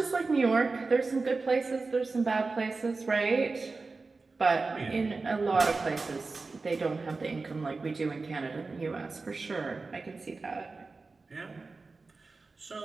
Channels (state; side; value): quieter; left; 3.9 dB